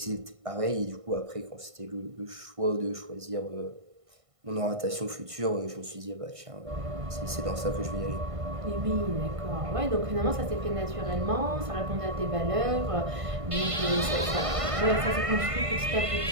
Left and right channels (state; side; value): late; left; 1.5 ms